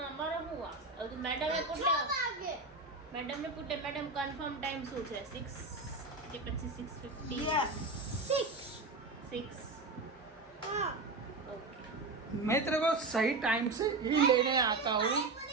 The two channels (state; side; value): quieter; left; 3.5 dB